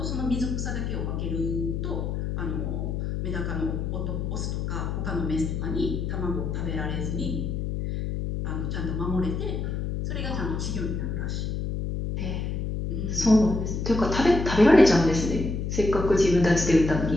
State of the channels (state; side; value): noise; left; hum, 2 dB below the sound